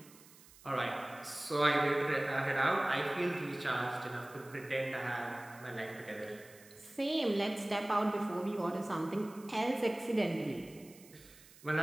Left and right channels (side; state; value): right; noise; hiss, 22 dB below the sound